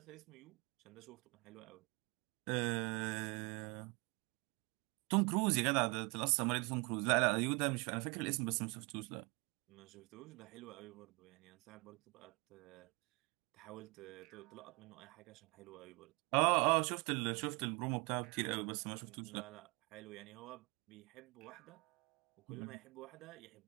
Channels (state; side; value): quieter; left; 29.1 dB